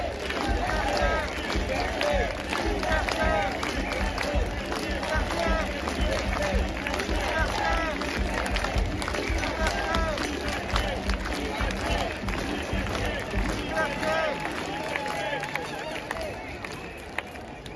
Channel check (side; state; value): both; identical; correlation 1.00